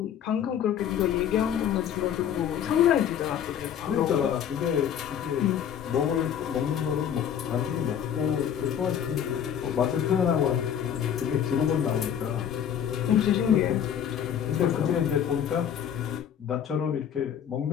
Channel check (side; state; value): right; quieter; 9.1 dB